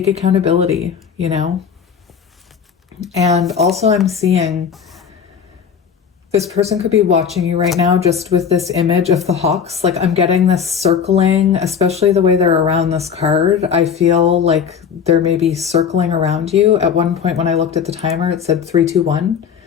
accountability, you know. And also I'm seeing this person could be watching you right now just with this image of the hawks. Like, I'm getting this circling, especially the way they're around this card. I feel like they're maybe circling around you. At one point when I looked at the timer, it said 3, 2, 1.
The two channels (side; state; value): right; quieter; 7.1 dB